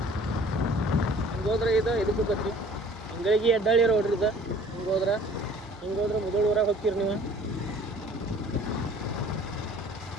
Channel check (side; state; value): both; normal; correlation 0.51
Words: ಹಿಂಗೋದ್ರೆ ಇದಕ್ಕೆ ಹೋಗತ್ರಿ. ಹಿಂಗಾಗಿ ಅಡ್ಡಾಳಿ ರೋಡ್ರಿ ಇದು. ಹಿಂಗೋದ್ರೆ ಮುದೋಳ ಊರಾಗ ಹೋಗ್ತೀರಿ ನೀವು.